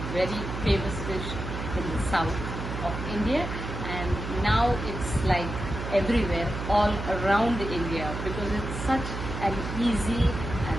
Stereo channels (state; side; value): noise; right; hum, 6 dB below the sound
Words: famous dish in the south of India. And now it's like everywhere, all around India, because it's such an easy